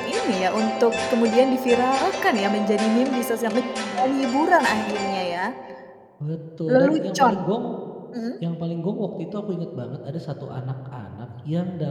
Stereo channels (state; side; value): identical; both; correlation 1.00